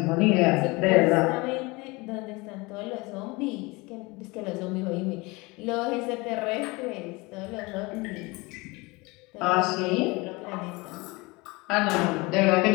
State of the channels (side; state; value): right; quieter; 24.6 dB